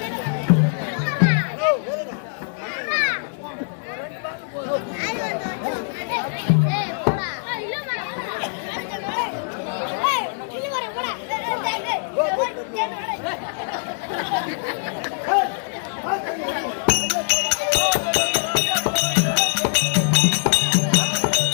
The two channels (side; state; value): right; silent; digital silence